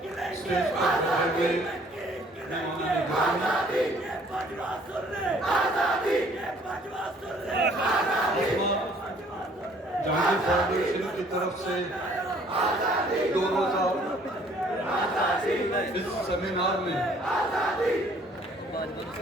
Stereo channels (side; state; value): both; normal; correlation 0.59